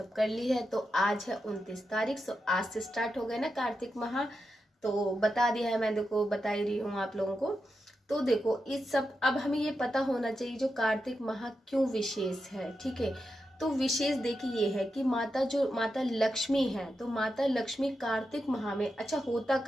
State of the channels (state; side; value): normal; both; correlation 0.88